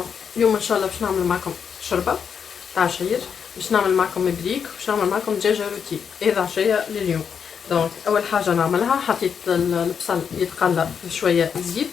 اليوم ان شاء الله باش نعمل معكم شوربه تاع عشير، باش نعمل معكم مبريك، باش نعمل معكم دجاجه روتي. هذا عشيه لليوم. دونك اول حاجه نعملها، حطيت البصل يتقلى في شويه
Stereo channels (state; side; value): quieter; right; 7.0 dB